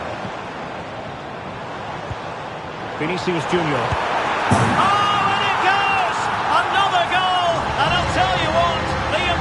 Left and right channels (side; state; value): both; identical; correlation 1.00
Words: Vinicius Junior. Oh, and it goes! Another goal! And I'll tell you what, the